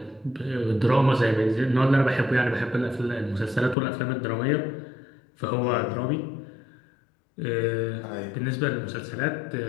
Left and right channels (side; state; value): right; drops out; at 3.8 s